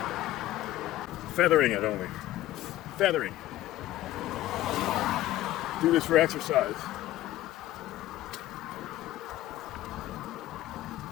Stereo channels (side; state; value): right; quieter; 14.7 dB